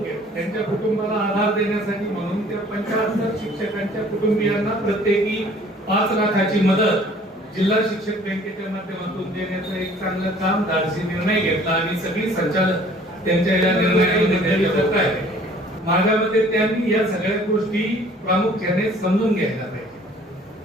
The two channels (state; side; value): normal; both; correlation 0.54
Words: त्यांच्या कुटुंबाला आधार देण्यासाठी म्हणून त्या 75 शिक्षकांच्या कुटुंबियांना प्रत्येकी 5 लाखाची मदत जिल्हा शिक्षक बँकेच्या माध्यमातून देण्याचं एक चांगलं काम धाडसी निर्णय घेतला आणि सगळी संचालक त्यांच्या या निर्णयामध्ये करत आहेत. माझ्या मते त्यांनी या सगळ्या गोष्टी प्रामुख्याने समजून घ्यायला पाहिजे.